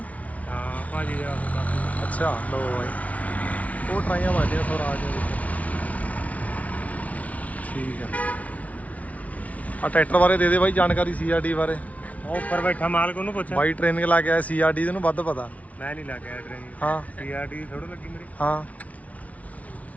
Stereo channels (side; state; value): right; late; 0.068 ms